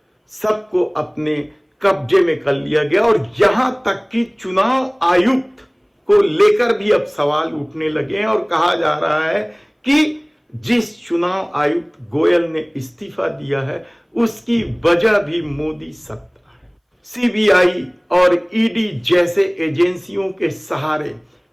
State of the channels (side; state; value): both; identical; correlation 1.00